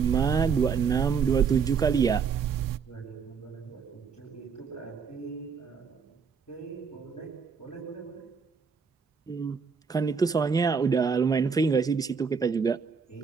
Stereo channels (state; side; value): quieter; left; 5.9 dB